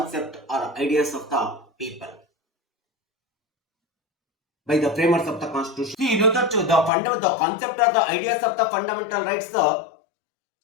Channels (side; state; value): right; drops out; at 6.9 s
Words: or ideas of the people by the framers of the constitution. See, you know that the concept or the ideas of the fundamental rights, the